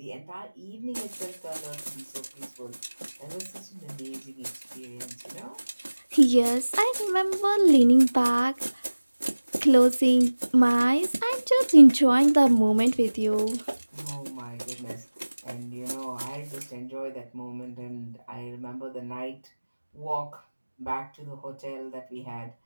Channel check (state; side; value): inverted; both; correlation -1.00